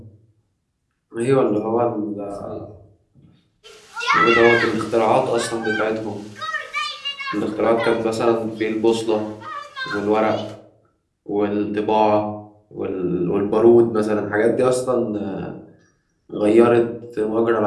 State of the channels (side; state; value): both; identical; correlation 1.00